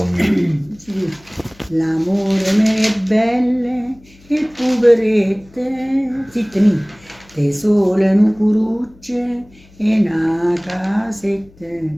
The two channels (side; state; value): left; noise; hum, 26 dB below the sound